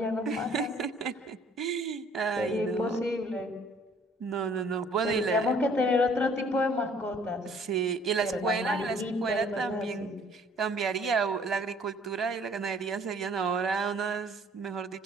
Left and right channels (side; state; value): both; normal; correlation 0.57